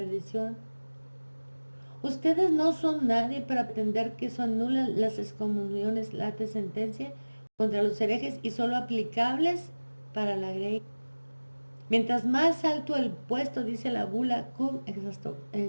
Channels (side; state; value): both; inverted; correlation -1.00